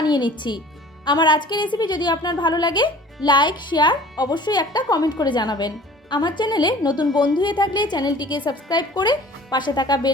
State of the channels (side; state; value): both; normal; correlation 0.47